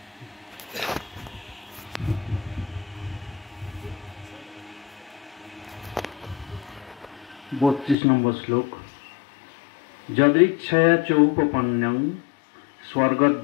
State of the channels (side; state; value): right; drops out; at 8.0 s